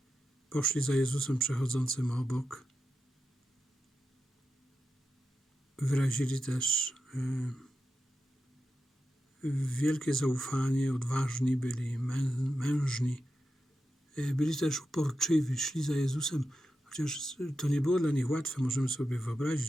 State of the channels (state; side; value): normal; both; correlation 0.89